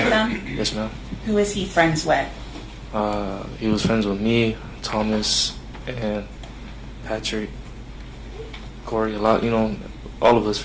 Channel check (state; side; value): identical; both; correlation 1.00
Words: them? Yes, ma'am. Who is he friends with? He was friends with me, Thomas, and Patrick, Corey, a lot, all of us